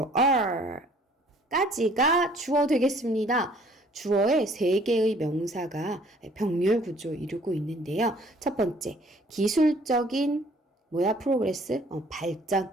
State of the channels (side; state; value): both; normal; correlation 0.57